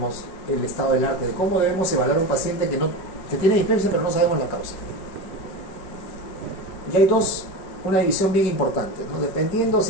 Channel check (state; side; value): late; right; 5.7 ms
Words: el estado del arte de cómo debemos evaluar a un paciente que tiene dispersia pero no sabemos la causa. Y hay una división bien importante, ¿no? Dependiendo